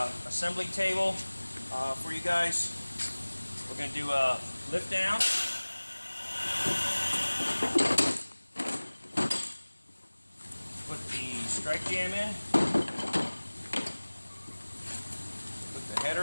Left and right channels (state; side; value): inverted; both; correlation -1.00